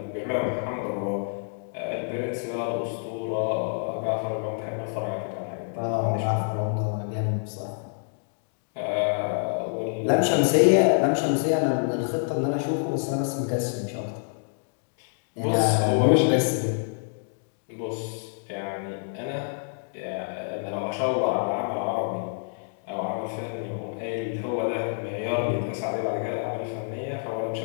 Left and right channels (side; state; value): right; silent; digital silence